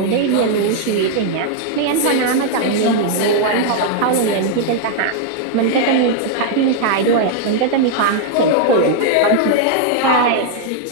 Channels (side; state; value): both; different; correlation 0.00